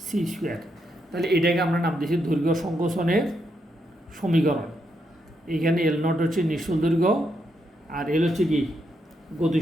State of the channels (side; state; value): both; normal; correlation 0.80